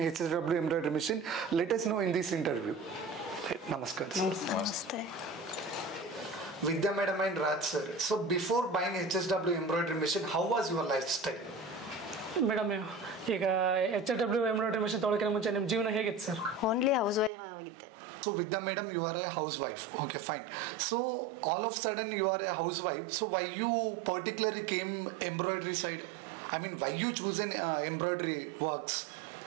embroidery machine, let us know in this interview. Namaskar. Namaste. Vidya madam and Raj sir, so before buying HSW embroidery machine, how was your lifestyle? Madam ಈಗ HSW embroidery mission ತೊಗೊಳಕ್ಕೆ ಮುಂಚೆ ನಿಮ್ಮ ಜೀವನ ಹೇಗಿತ್ತು sir? Only house wife ಆಗಿದ್ದೆ. So Vidya madam, you are a housewife. Okay, fine. So all of a sudden you are a housewife. So why you particularly came embroidery side? I mean, why you choose an embroidery works?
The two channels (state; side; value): drops out; left; at 17.3 s